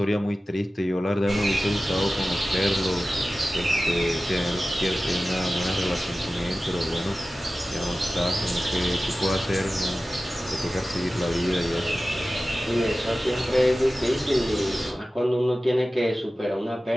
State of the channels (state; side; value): normal; both; correlation 0.95